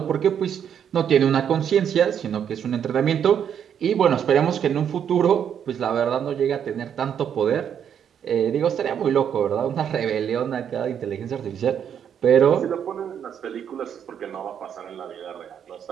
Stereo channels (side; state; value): left; quieter; 8.5 dB